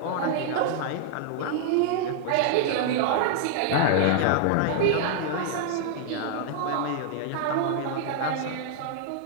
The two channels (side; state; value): both; different; correlation -0.01